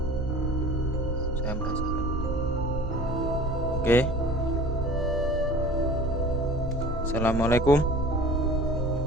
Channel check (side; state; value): both; normal; correlation 0.43